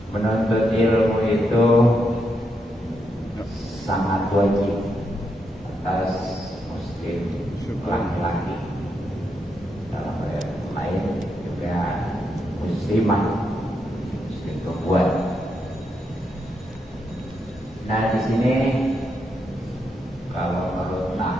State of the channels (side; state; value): both; normal; correlation 0.81